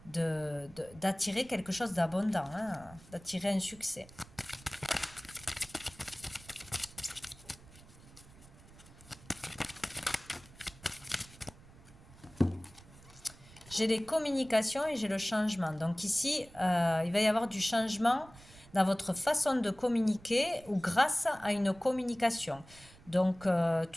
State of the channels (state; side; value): noise; right; rumble, 22 dB below the sound